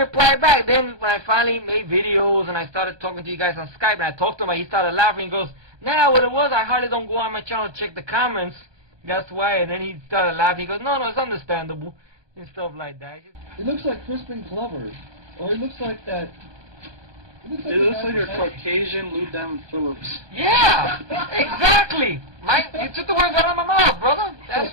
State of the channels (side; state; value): left; late; 1.2 ms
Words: back. Then when I finally made videos and I started talking to you guys on Skype and I talked to him, he started laughing. He goes, nah, what it was, I hardly don't go on my channel to check the comments. That's why. And then he started laughing. He goes, no, it's understandable. And stuff like that. It looks like Crispin Glover. Or it looks like that... It looks like a Caucasian Lou Diamond Phillips. Yeah! Exactly! Mike, you took the words out of my mouth, brother. That's